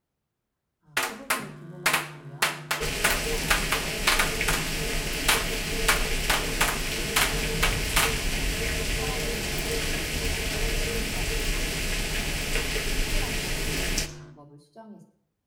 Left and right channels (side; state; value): both; identical; correlation 1.00